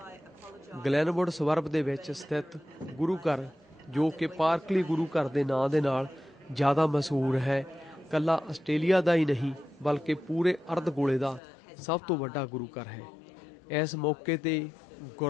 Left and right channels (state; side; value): drops out; right; at 11.4 s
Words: ਗਲੈਨਵੁੱਡ ਸਵਰਬ ਦੇ ਵਿੱਚ ਸਥਿਤ ਗੁਰੂ ਘਰ ਜੋ ਕਿ ਪਾਰਕਲੀ ਗੁਰੂ ਘਰ ਦੇ ਨਾਂ ਦੇ ਨਾਲ ਜ਼ਿਆਦਾ ਮਸ਼ਹੂਰ ਹੈ, ਇਕੱਲਾ ਆਸਟ੍ਰੇਲੀਆ ਦਾ ਹੀ ਨਹੀਂ ਬਲਕਿ ਪੂਰੇ ਅਰਧ ਗੋਲੇ ਦਾ ਸਭ ਤੋਂ ਵੱਡਾ ਗੁਰੂ ਘਰ ਹੈ। ਇਸ ਮੌਕੇ 'ਤੇ